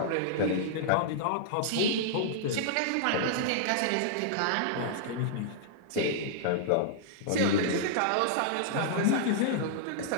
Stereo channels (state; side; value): different; both; correlation -0.01